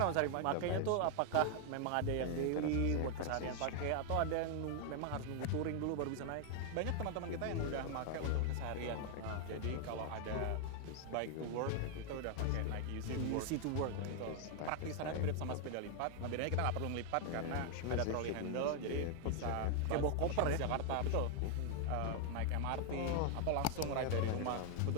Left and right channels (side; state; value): both; different; correlation 0.00